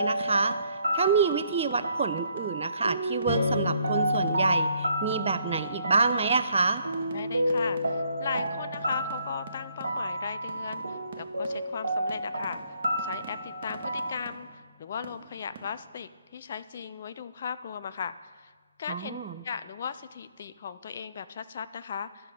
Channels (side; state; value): both; inverted; correlation -0.68